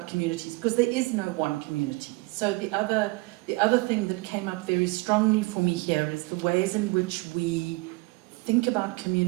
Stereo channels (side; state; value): left; quieter; 24.6 dB